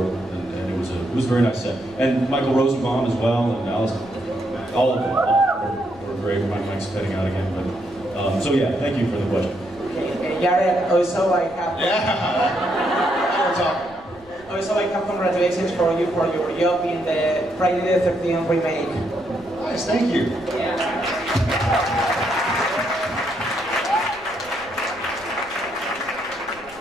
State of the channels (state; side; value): noise; left; rumble, 25 dB below the sound